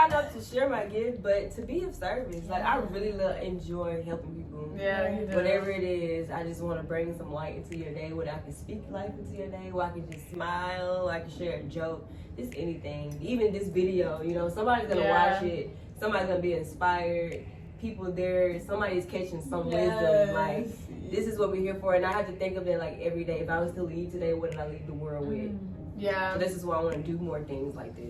up to share my gift, but to be of service. Like, I really enjoy helping people. Yeah, you do. Whatever it is, I just want to bring some light into your day, where I can speak life into your day, where I can just smile, I can share a joke, just anything. Even this video, you know, somebody's going to watch it, somebody's going to be inspired, people there, somebody's catching some wisdom. Like, this is what we're here for, and I have to think of it like every day. If I was to leave today, what did I leave the world with? Yeah. So this is why I want to do more things like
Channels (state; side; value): identical; both; correlation 1.00